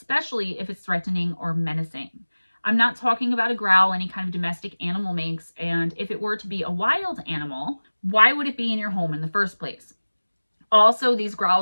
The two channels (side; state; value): both; inverted; correlation -1.00